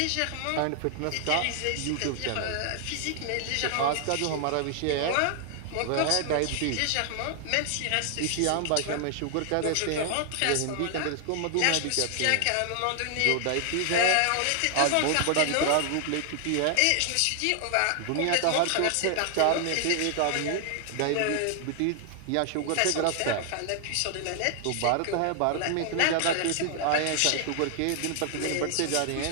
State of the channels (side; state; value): both; different; correlation 0.00